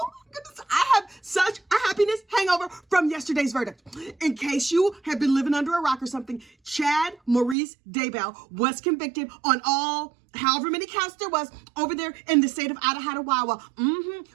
my goodness, I have such a happiness hangover from yesterday's verdict. In case you have been living under a rock or something, Chad Maurice Daybell was convicted on all however many counts there was over there in the state of Idaho,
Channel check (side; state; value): left; drops out; at 7.6 s